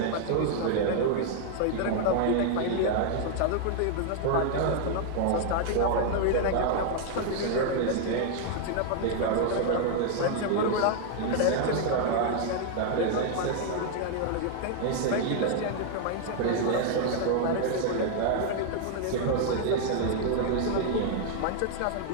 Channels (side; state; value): both; different; correlation 0.00